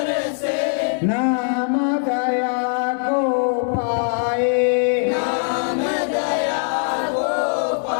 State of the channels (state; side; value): silent; right; 65 dB below the other